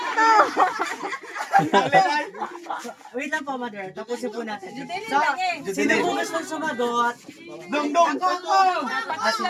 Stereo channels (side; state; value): both; identical; correlation 1.00